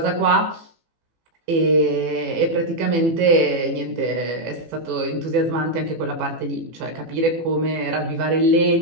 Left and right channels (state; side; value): late; left; 18 ms